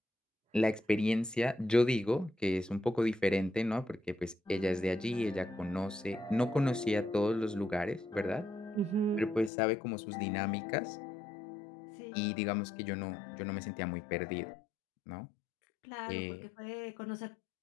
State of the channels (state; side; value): drops out; right; at 9.5 s